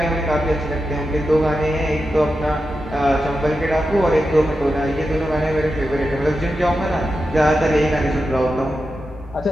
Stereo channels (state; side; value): normal; both; correlation 0.90